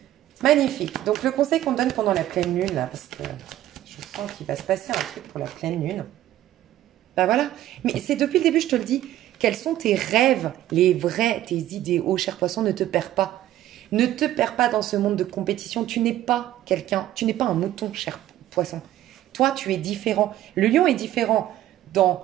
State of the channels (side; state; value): left; quieter; 13.4 dB